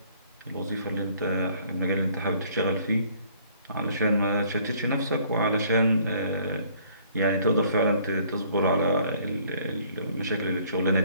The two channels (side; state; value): both; inverted; correlation -0.60